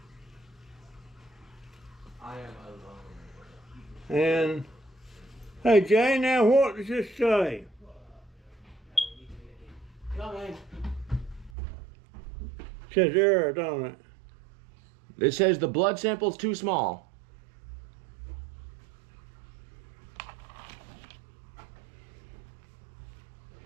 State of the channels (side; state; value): left; drops out; at 11.5 s